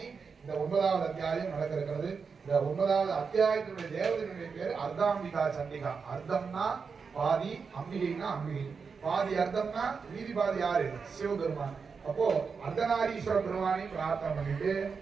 இந்த 9வது அத்தியாயம் நடக்க இருக்கிறது. இந்த 9வது அத்தியாயத்தினுடைய தேவதையினுடைய பேர் அர்த்தாம்பிகா சண்டிகா. அர்த்தம்னா பாதி, அம்பிகைனா அம்பிகை. பாதி அர்த்தம்னா மீதி பாதி யாரு? சிவபெருமான். அப்போ அர்த்தநாரீஸ்வர பெருமானை பிரார்த்தனை பண்ணிட்டு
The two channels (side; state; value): left; quieter; 5.4 dB